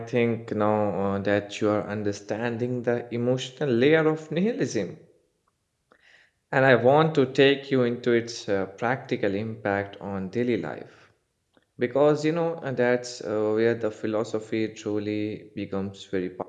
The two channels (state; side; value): identical; both; correlation 1.00